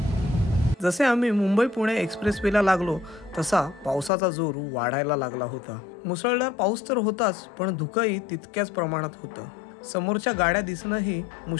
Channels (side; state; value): right; drops out; at 4.1 s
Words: जसे आम्ही मुंबई पुणे एक्सप्रेस वेला लागलो तसा पावसाचा जोर वाढायला लागला होता. मुसळधार पाऊस तर होताच, पण धुकंही तितक्याच प्रमाणात होतं. समोरच्या गाड्या दिसणंही